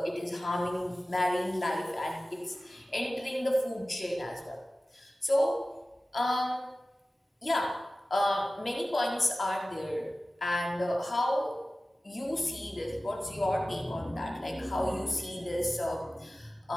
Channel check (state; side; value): normal; both; correlation 0.96